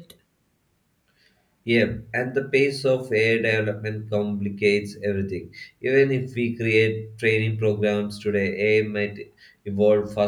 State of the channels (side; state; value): both; identical; correlation 1.00